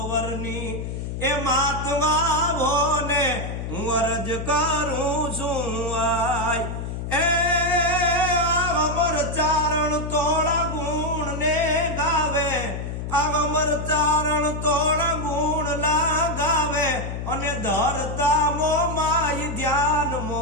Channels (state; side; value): noise; left; hum, 5 dB below the sound